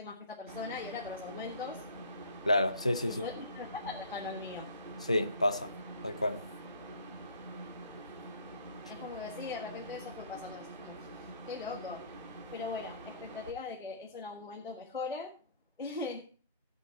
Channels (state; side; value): inverted; both; correlation -0.54